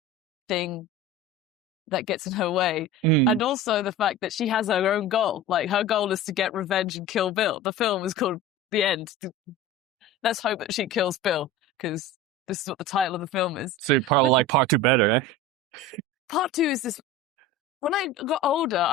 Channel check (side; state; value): both; normal; correlation 0.32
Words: that gets in her way. And also the fact that she has her own goal. Like, her goal is to get revenge and kill Bill. The film is called The End. Let's hope that she kills Bill, because this is what the title of the film is. So you probably like part 2 better, eh? Part 2 is this. When I got